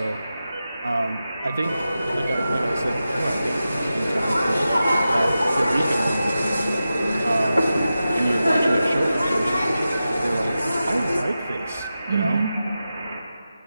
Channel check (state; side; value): inverted; both; correlation -0.92